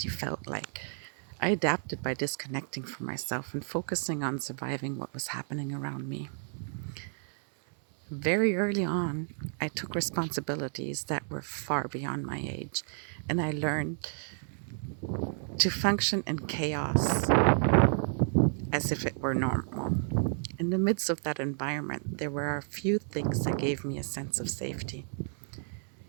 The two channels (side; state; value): left; silent; 57 dB below the other